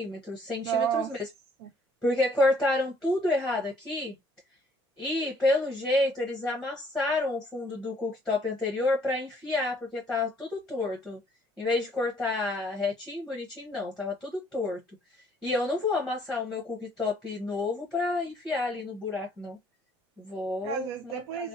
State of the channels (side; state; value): both; normal; correlation 0.63